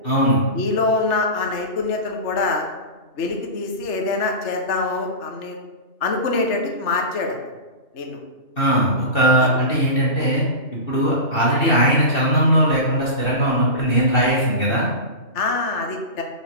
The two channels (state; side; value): late; right; 2.7 ms